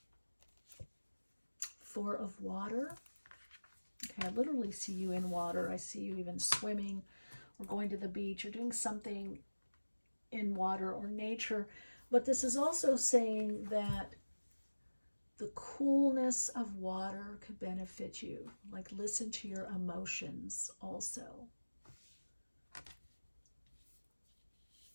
4 of Water. Okay, I literally see you in water. I see you even swimming or going to the beach or doing something in water or nature. But this is also saying that the coolness of water could benefit you. Like, listen to your emotions also.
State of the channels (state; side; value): inverted; both; correlation -1.00